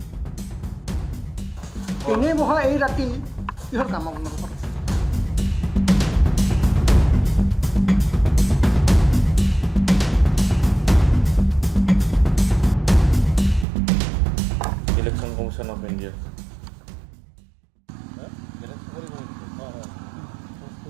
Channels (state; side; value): drops out; left; at 13.7 s